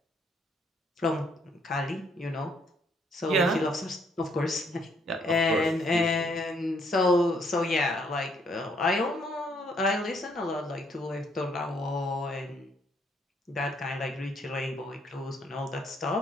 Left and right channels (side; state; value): both; normal; correlation 0.69